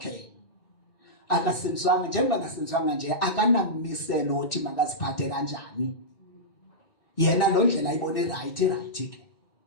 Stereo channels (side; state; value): right; late; 2.6 ms